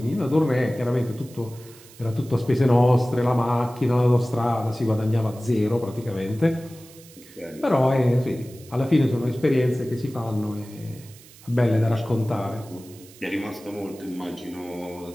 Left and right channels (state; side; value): noise; right; hiss, 22 dB below the sound